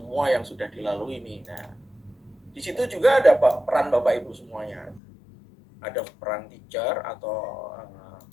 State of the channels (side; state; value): right; drops out; at 5.0 s